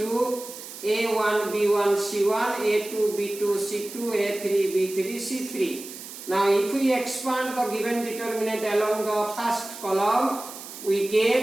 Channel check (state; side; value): noise; right; hiss, 13 dB below the sound